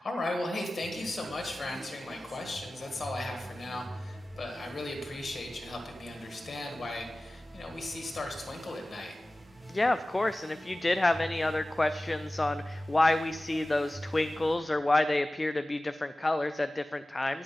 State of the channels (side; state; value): both; normal; correlation 0.97